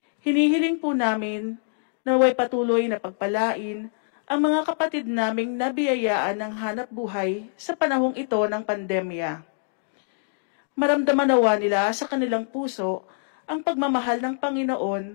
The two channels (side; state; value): right; silent; digital silence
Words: Hinihiling po namin na naway patuloy na pagpalain ang mga kapatid naming nabiyayaan ng hanap buhay sa panahong ito ng pandemya. Maramdaman nawa nila sa kanilang puso ang pagmamahal ng